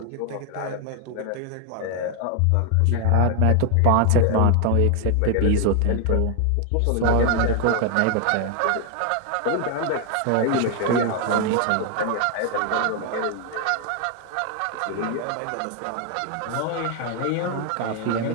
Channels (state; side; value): different; both; correlation 0.00